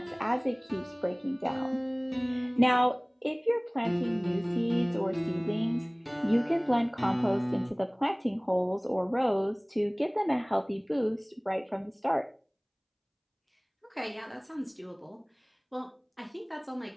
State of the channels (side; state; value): both; identical; correlation 1.00